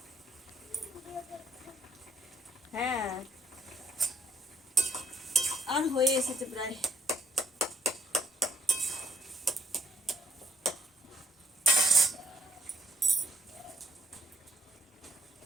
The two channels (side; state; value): both; normal; correlation 0.73